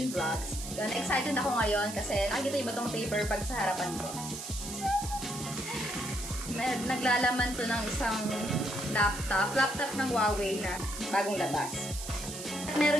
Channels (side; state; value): right; noise; hiss, 9 dB below the sound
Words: Vlogs. Yun, excited ako ngayon kasi nakikita iba tong paper bag sa harapan ko. Naglalaman to ng isang laptop ng Huawei na bagong labas. At